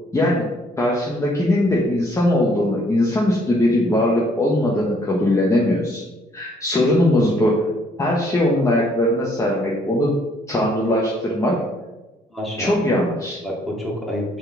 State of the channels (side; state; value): both; normal; correlation 0.65